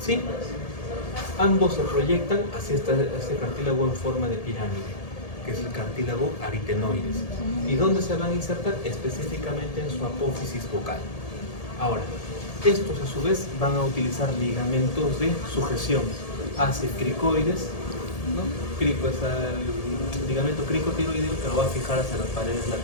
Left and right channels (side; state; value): right; late; 1.8 ms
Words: Ambos se proyectan hacia este cartílago en forma de pirámide, que es el cartílago aritenoides. ¿Y dónde se van a insertar? Específicamente en su apófisis vocal. Ahora, estos a su vez van a utilizar ligamentos de sujeción hacia cricoides, ¿no? Crico es el ligamento cricotiroideo que lo va a fijar hacia las paredes